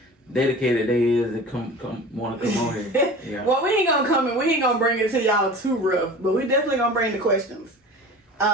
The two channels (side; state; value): both; normal; correlation 0.38